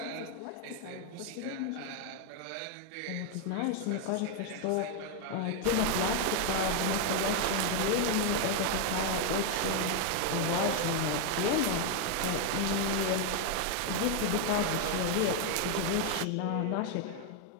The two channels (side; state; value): both; different; correlation 0.00